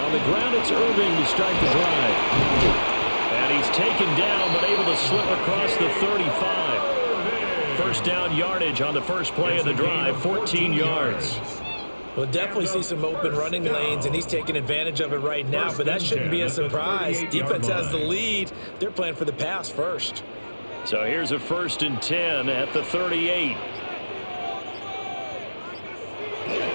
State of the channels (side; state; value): both; inverted; correlation -1.00